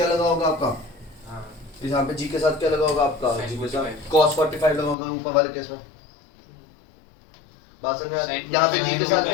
लगा होगा आपका, यहाँ पे जी के साथ क्या लगा होगा आपका, Sin जी के साथ 45 cos 45 लगा होगा ऊपर वाले केस में। बात समझ में आती है? Sin यहाँ पे जी के साथ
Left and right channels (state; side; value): drops out; right; at 5.0 s